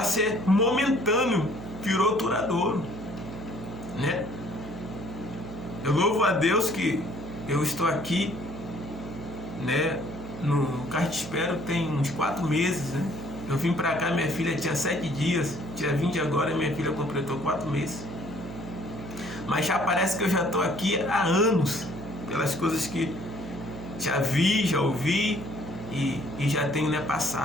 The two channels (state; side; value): noise; right; hum, 11 dB below the sound